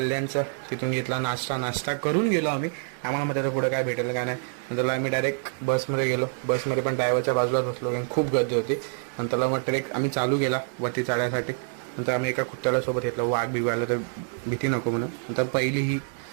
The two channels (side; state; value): left; silent; 61 dB below the other